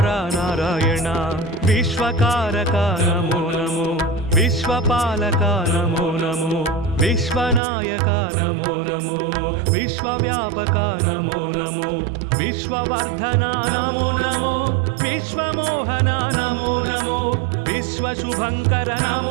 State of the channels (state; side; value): drops out; left; at 7.6 s